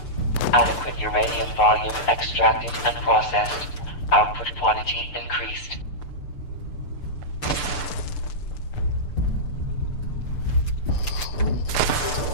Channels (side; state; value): right; late; 6.8 ms